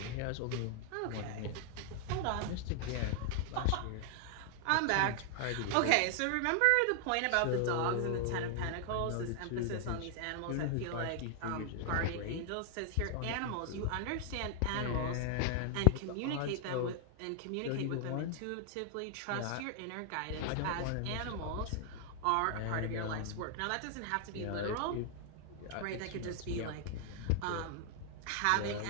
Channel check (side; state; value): both; different; correlation 0.00